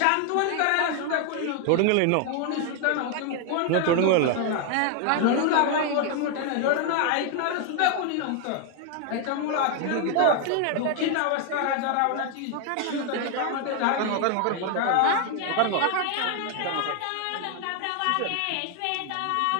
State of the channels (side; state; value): both; different; correlation 0.00